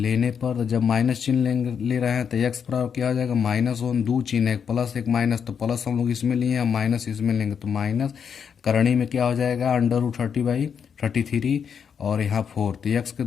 पर, जब माइनस चिन्ह ले रहे हैं तो x बराबर क्या हो जाएगा -1, 2 चिन्ह एक प्लस एक माइनस, तो प्लस हम लोग इसमें लिए हैं, माइनस इसमें लेंगे तो माइनस, करणी में क्या हो जाएगा √30/33 और यहाँ 4, तो x के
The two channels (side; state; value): right; quieter; 7.1 dB